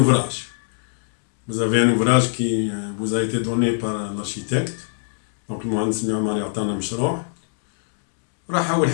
Vous avez un ouvrage qui vous a été donné par l'architecte, donc المهندس المعماري عطانا مشروع. راح أول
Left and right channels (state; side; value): silent; right; digital silence